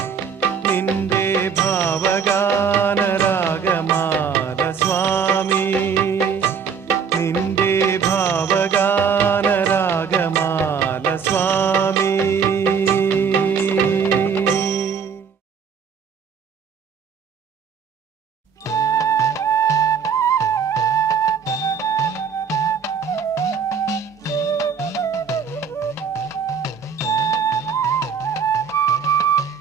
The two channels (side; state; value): left; quieter; 6.6 dB